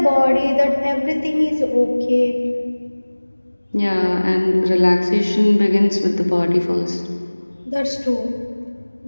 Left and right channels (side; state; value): both; inverted; correlation -1.00